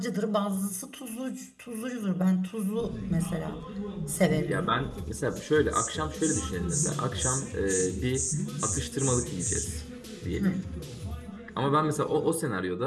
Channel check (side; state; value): both; identical; correlation 1.00